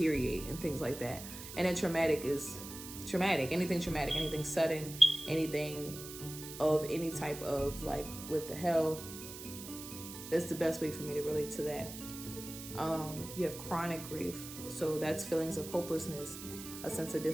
and things like that. And then traumatic is traumatic. Anything traumatic, anything sudden, anything of any type of like, what the hell? That's the best way for me to relate to that. You have chronic grief. So that's feelings of hopelessness, a sense of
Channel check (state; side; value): noise; right; hiss, 11 dB below the sound